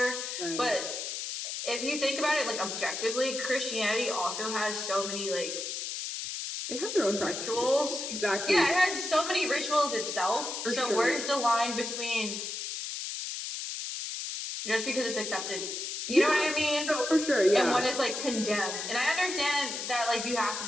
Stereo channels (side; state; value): left; noise; hiss, 5 dB below the sound